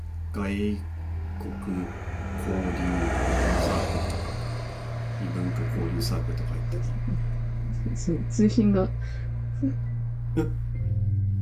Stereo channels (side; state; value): both; identical; correlation 1.00